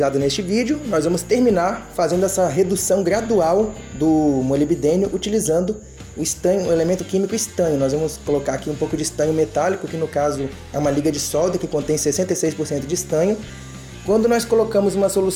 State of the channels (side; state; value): both; identical; correlation 1.00